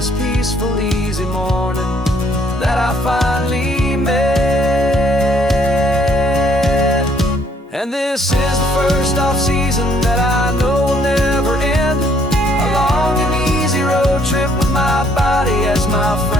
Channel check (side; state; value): both; normal; correlation 0.65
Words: peaceful, easy morning that I finally met. And this is the first off-season that I know will never end. A long and easy road trip with my body as my